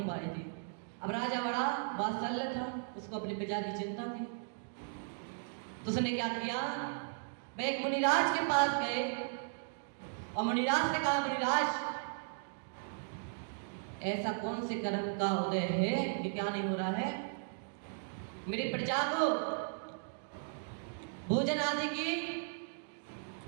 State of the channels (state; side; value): silent; left; digital silence